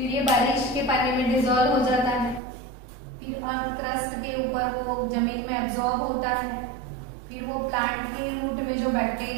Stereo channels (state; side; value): drops out; left; at 2.4 s